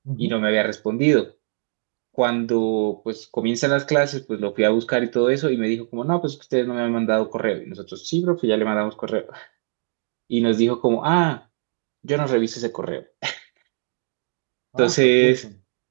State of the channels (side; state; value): left; silent; 58 dB below the other